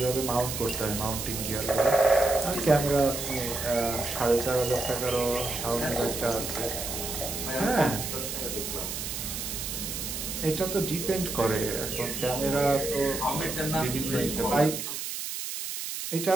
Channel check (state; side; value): noise; right; hiss, 5 dB below the sound